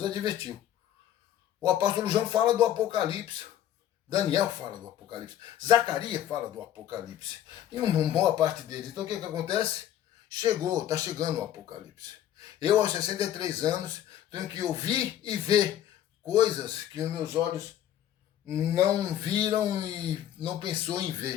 advertiu. O apóstolo João fala do Apocalipse. Daniel fala do Apocalipse. Zacarias fala do Apocalipse. E uma boa parte deles. Então o que acontece? Está chegando o Apocalipse. Eu, aos 63 anos, tenho que ouvir e ver coisas que os meus olhos não viram e não pensou em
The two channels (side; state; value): right; quieter; 11.5 dB